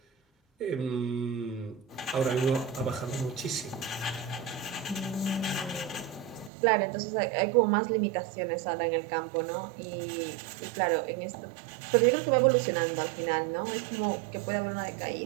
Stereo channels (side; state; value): left; drops out; at 6.5 s